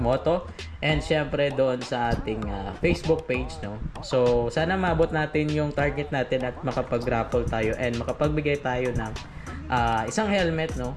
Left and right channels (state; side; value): identical; both; correlation 1.00